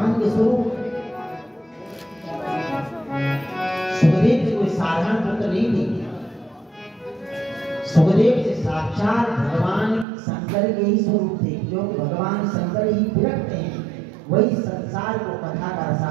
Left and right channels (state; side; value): drops out; left; at 10.1 s